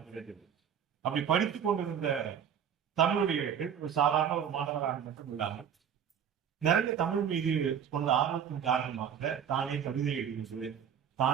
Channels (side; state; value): left; quieter; 8.3 dB